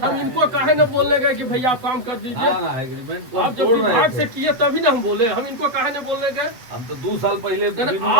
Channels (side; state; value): left; late; 8.0 ms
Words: हम है। इनको काहे न बोलने गए कि भैया आप काम कर दीजिए। ना एग्रीमेंट को आप हम जब तोड़ रहे विभाग से थे। किए तभी ना हम बोले, हम इनको काहे न बोलने गए। हम तो 2 साल पहले नहीं, बिनु